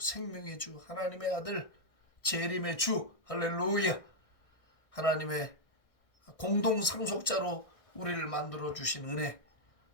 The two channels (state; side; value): late; right; 1.6 ms